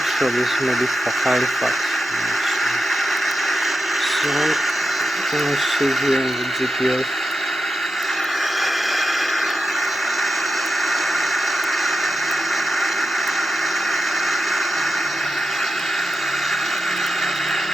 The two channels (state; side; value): normal; both; correlation 0.89